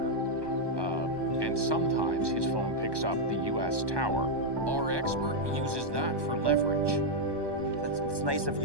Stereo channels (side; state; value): left; late; 1.2 ms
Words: and sometimes his phone picks up the U.S. tower. Our expert uses that for leverage. It's nice of